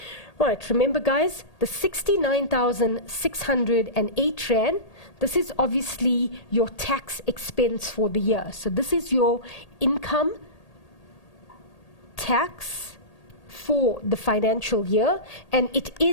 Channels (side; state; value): right; late; 1.8 ms